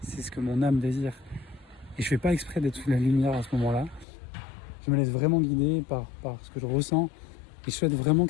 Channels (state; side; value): drops out; right; at 4.0 s